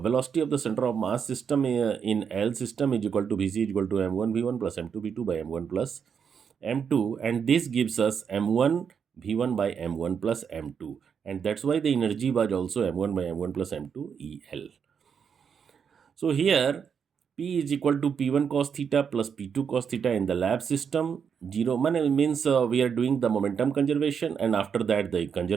velocity of the center of mass system in L system is equal to Vc is equal to m1 v1 plus m2 v2 by m1 plus m2, and this gives us m1 v1 by m1 plus m2, and that's why the energy was also m1 by m1 plus m2 El. So here P is equal to P1 cos theta plus P2 cos theta in the lab system. 0 means we are doing the momentum conservation, and after that the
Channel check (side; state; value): left; quieter; 7.0 dB